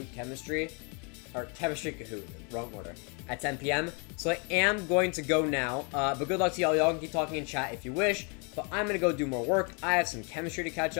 chemistry. Or chemistry Kahoot, wrong order. At 10 p.m. So I am going to go now, but good luck to y'all. Y'all can keep talking in chat if you wish, but I'm going to go do more work. I have some chemistry to catch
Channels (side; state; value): right; quieter; 35.4 dB